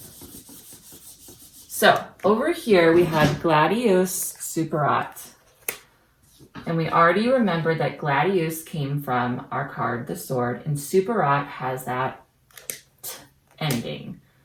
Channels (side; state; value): both; identical; correlation 1.00